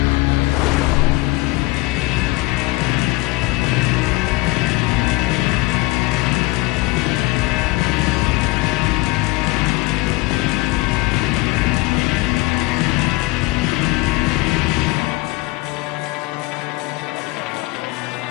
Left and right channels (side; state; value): right; quieter; 21.8 dB